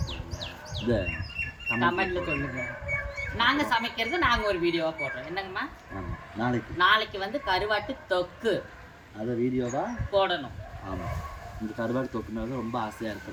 போடுங்க, இதை கமெண்ட்ல சொல்லுங்க. நாங்கள் சமைக்கிறது நாங்கள் ஒரு வீடியோவாக போடுறோம். என்னங்கம்மா? ஆமாம், நாளைக்கு வந்து கருவாட்டு தொக்கு அதை வீடியோவாக போடணும். ஆமாம், இந்த கருவாட்டு தொக்குனால ரொம்ப ஆசையாக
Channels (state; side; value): identical; both; correlation 1.00